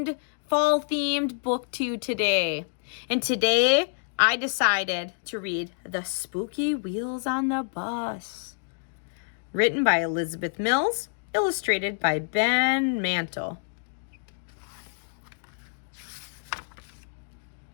fall themed book to you today. And today I decided to read The Spooky Wheels on the Bus. Written by Elizabeth Mills, illustrated by Ben Mantle.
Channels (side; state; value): right; silent; digital silence